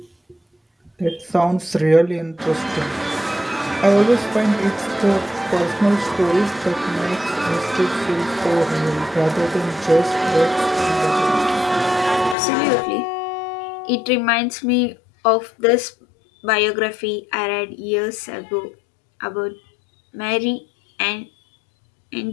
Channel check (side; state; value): right; drops out; at 12.4 s